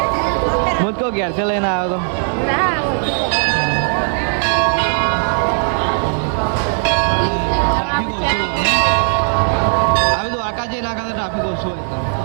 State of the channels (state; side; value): silent; left; 67 dB below the other